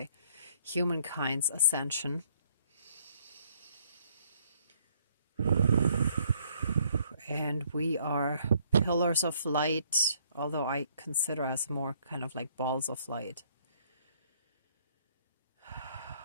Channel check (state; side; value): inverted; both; correlation -0.65